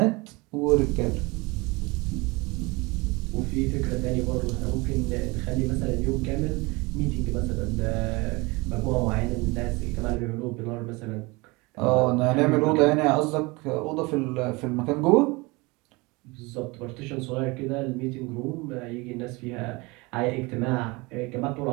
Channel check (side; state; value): left; quieter; 25.0 dB